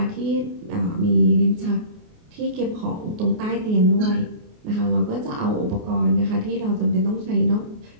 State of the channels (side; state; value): left; late; 28 ms